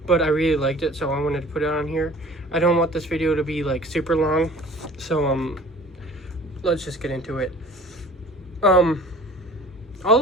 but I really liked it, so I wanted to put it on here. I don't want this video to be like super long, so let's just get into it.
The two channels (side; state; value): both; normal; correlation 0.46